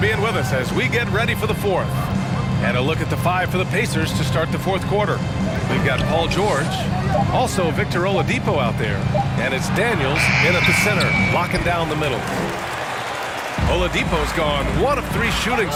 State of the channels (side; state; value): both; identical; correlation 1.00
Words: with us as we get ready for the 4th. And a look at the 5 for the Pacers to start the 4th quarter. We've got Paul George, also Victor Oladipo out there, and it's Daniels in at the center, locking down the middle. Oladipo's gone 1 of 3 shooting